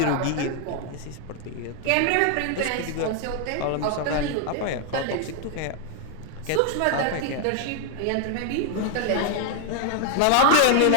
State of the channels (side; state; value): both; different; correlation 0.00